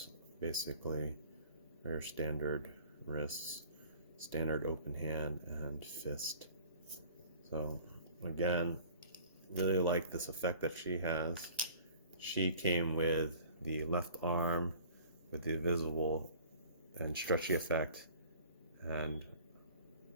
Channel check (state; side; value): inverted; both; correlation -0.48